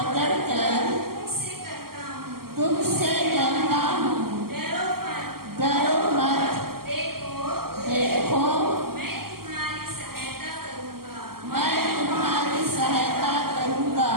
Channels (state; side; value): late; left; 0.93 ms